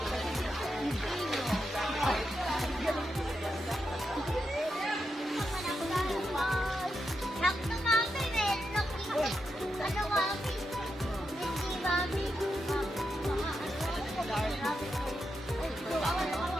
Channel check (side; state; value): both; normal; correlation 0.85